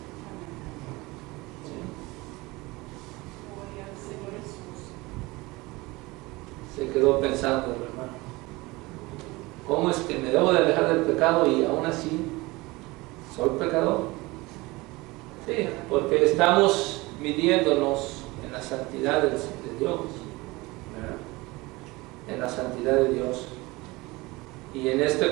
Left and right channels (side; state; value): left; quieter; 22.3 dB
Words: Se quedó pensando el hermano, ¿cómo es que me debo de alejar del pecado y aún así soy pecador? Sí, porque estamos midiéndonos en la santidad de Dios, ¿verdad? En la santidad de Dios. Y en este